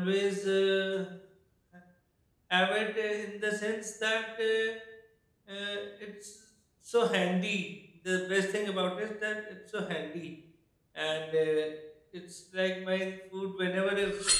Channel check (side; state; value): both; identical; correlation 1.00